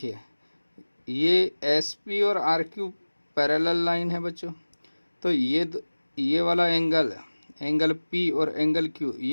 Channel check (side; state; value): both; inverted; correlation -1.00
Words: ये एस पी और आर क्यू पैरेलल लाइन है बच्चों, तो ये वाला एंगल पी और एंगल क्यू